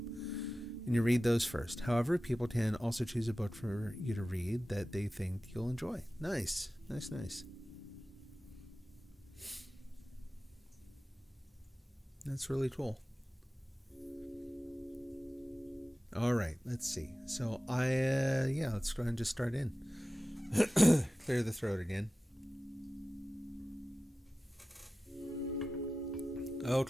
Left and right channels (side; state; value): both; normal; correlation 0.95